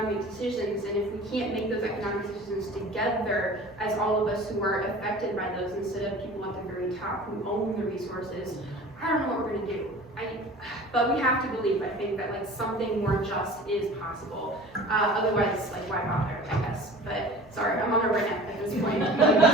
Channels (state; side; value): normal; both; correlation 0.42